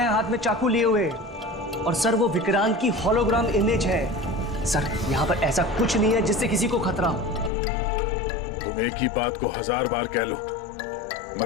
हाथ में चाकू लिए हुए। और सर वो विक्रांत की होलोग्राम इमेज है। सर यहाँ पर ऐसा कुछ नहीं है जिससे किसी को खतरा हो। तुम एक ही बात को 1000 बार कह लो,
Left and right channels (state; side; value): drops out; right; at 7.5 s